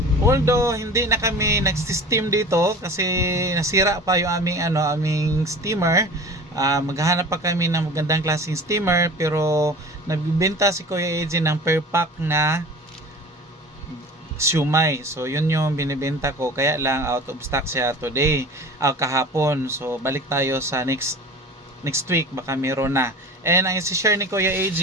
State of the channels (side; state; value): both; normal; correlation 0.39